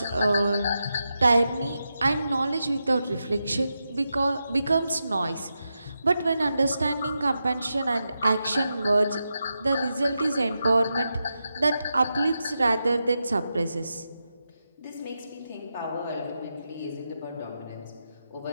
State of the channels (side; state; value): both; inverted; correlation -0.88